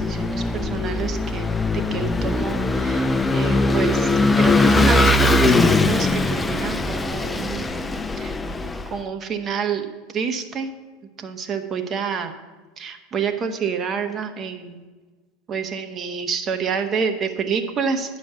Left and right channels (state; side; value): normal; both; correlation 0.71